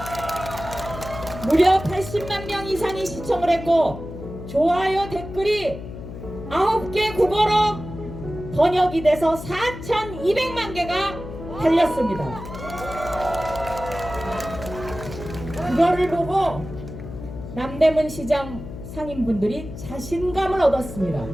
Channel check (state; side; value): noise; left; hum, 11 dB below the sound